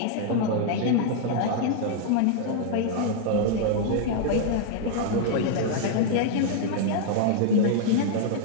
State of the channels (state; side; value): different; both; correlation -0.01